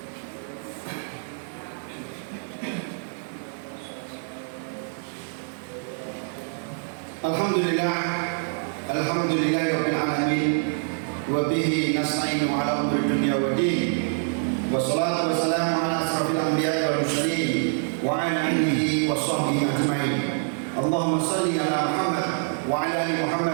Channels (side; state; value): left; silent; digital silence